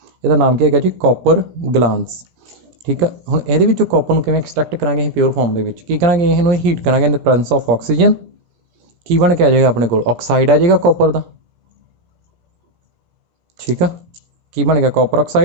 ਇਹਦਾ ਨਾਮ ਕੀ ਹੈਗਾ ਜੀ ਕਾਪਰ ਗਲਾਂਸ ਠੀਕ ਆ ਹੁਣ ਇਹਦੇ ਵਿੱਚੋਂ ਕਾਪਰ ਨੂੰ ਕਿਵੇਂ ਐਕਸਟ੍ਰੈਕਟ ਕਰਾਂਗੇ ਅਸੀਂ ਪਿਓਰ ਫਾਰਮ ਦੇ ਵਿੱਚ ਕੀ ਕਰਾਂਗੇ ਇਹਨੂੰ ਹੀਟ ਕਰਾਂਗੇ ਇਨ ਦ ਪ੍ਰੈਜ਼ੈਂਸ ਆਫ ਆਕਸੀਜਨ ਕੀ ਬਣ ਕੇ ਆ ਜਾਏਗਾ ਆਪਣੇ ਕੋਲ ਆਕਸਾਈਡ ਆ ਜਾਏਗਾ ਕਾਪਰ ਦਾ ਠੀਕ ਆ ਕੀ ਬਣ ਗਿਆ copper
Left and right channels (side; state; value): left; late; 17 ms